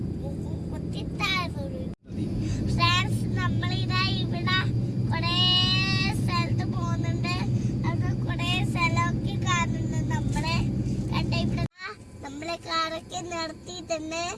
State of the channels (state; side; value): identical; both; correlation 1.00